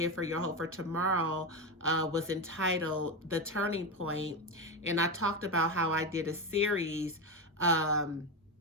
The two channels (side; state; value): both; normal; correlation 0.14